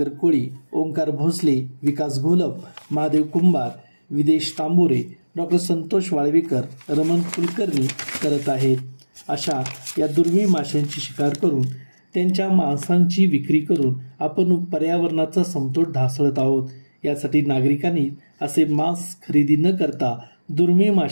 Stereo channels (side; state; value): both; inverted; correlation -1.00